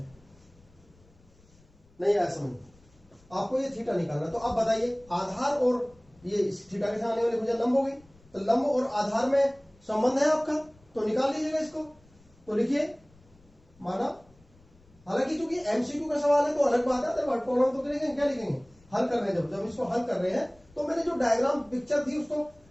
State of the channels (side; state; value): left; noise; rumble, 29 dB below the sound